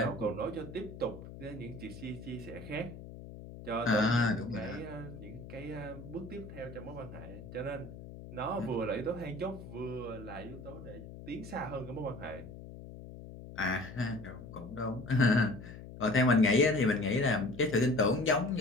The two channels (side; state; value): left; noise; hum, 13 dB below the sound